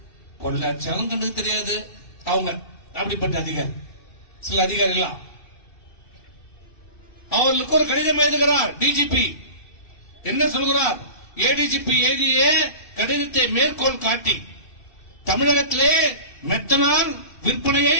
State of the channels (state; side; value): late; right; 2.7 ms